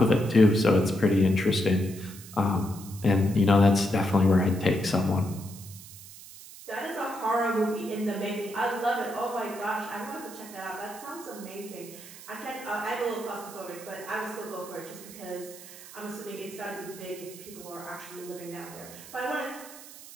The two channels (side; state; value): right; noise; hiss, 16 dB below the sound